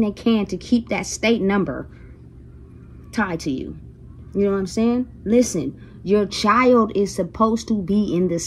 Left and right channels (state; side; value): identical; both; correlation 1.00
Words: can to keep that state number tied to you. You know what I'm saying? Listen, your child is supposed to be in the